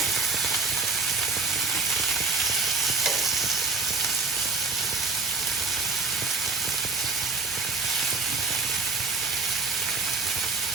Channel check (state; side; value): quieter; left; 4.2 dB